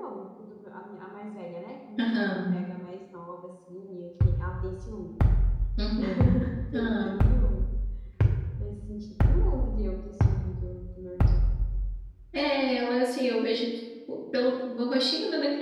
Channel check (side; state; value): both; identical; correlation 1.00